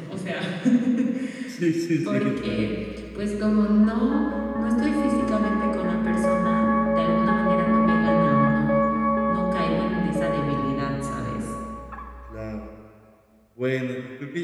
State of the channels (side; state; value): both; identical; correlation 1.00